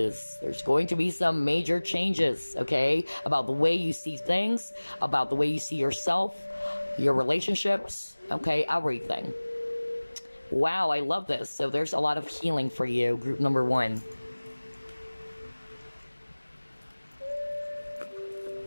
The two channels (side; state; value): both; inverted; correlation -1.00